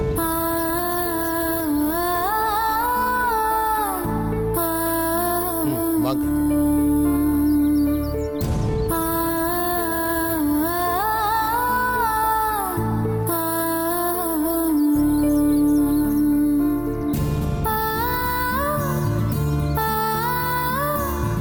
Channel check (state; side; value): identical; both; correlation 1.00